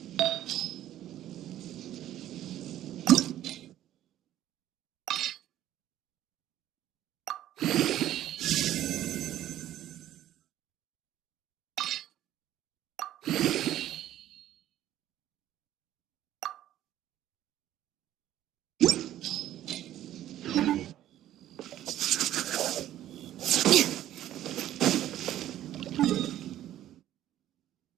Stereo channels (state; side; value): quieter; left; 12.7 dB